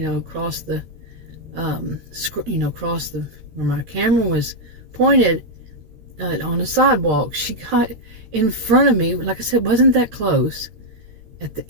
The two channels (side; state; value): left; late; 13 ms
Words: the, across the where my camera was pointed. On the sidewalk, she got in front of me, like I said, wasn't that close, at the